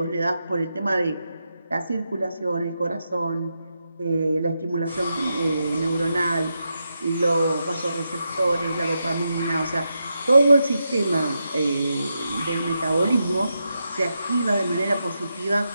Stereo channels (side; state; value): both; inverted; correlation -0.86